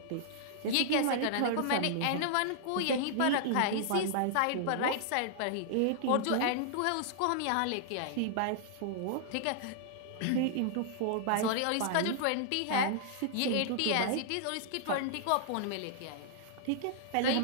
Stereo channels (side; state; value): both; different; correlation -0.01